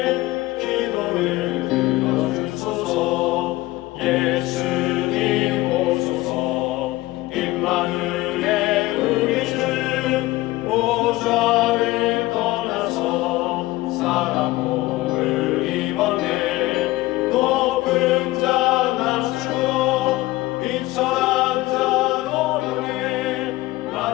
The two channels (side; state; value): right; quieter; 18.9 dB